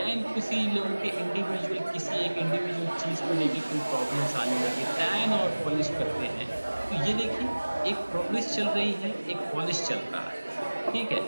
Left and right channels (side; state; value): both; inverted; correlation -1.00